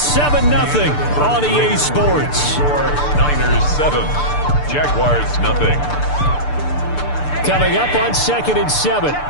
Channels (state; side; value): late; right; 6.8 ms